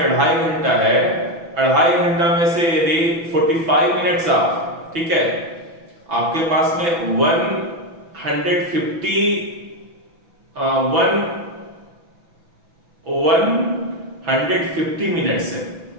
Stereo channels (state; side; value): late; left; 6.0 ms